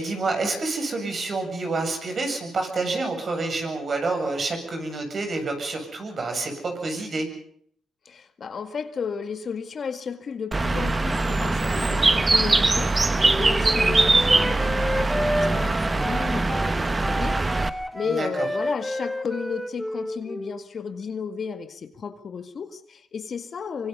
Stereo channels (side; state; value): both; normal; correlation 0.93